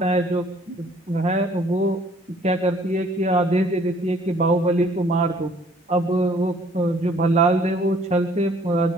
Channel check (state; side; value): normal; both; correlation 0.59